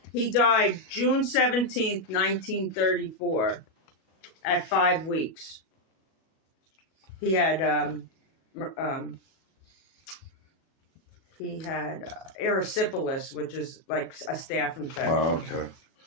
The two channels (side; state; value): right; late; 37 ms